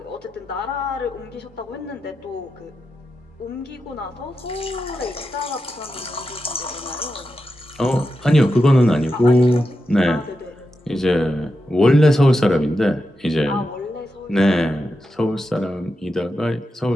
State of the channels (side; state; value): both; normal; correlation 0.88